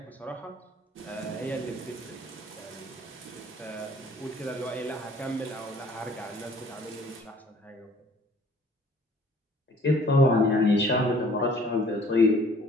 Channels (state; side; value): normal; both; correlation 0.55